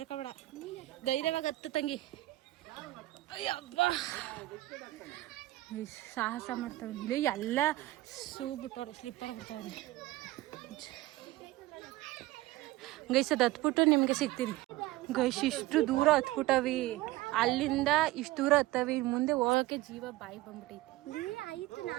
ಧೈರ್ಯವಾಗಿ ಹತ್ತು ತಂಗಿ. ಅಯ್ಯಬ್ಬ ಸಾಹಸ ಮಾಡ್ತಾವ್ರಿ ಇಲ್ಲಿ ಎಲ್ಲ ಶೂ ಬಿಟ್ಟವ್ರೆ, ಸ್ಲಿಪ್ಪರ್ ಬಿಡ್ತಾವ್ರಿ. ಗೈಸ್ ಅದು ಹತ್ಬಿಟ್ಟು ನಿಮಗೆ ಸಿಗ್ತೀನಿ ಗೈಸ್. ಇಷ್ಟು ದೂರ ಹತ್ಬಿಟ್ಟವಿ, ಅಲ್ಲಿಂದ ಇಷ್ಟು ದೂರ ಹತ್ತವಿ, ಮುಂದೆ ಹೋಗಕ್ಕೆ ಜೀವ ಬಾಯಿ ಬಂದ್ಬಿಟ್ಟೈತಿ. ಆಯ್ತು,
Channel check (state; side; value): quieter; left; 18.0 dB